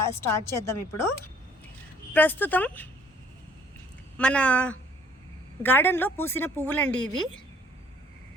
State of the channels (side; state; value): both; normal; correlation 0.59